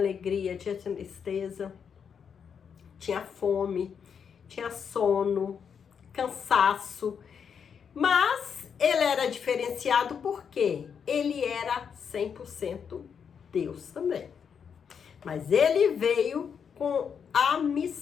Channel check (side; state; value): right; quieter; 7.0 dB